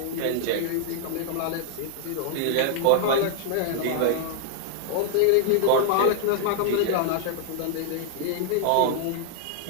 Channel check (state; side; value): different; both; correlation 0.00